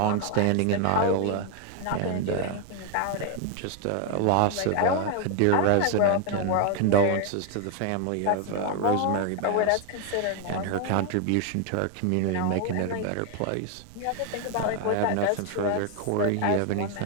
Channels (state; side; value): different; both; correlation 0.00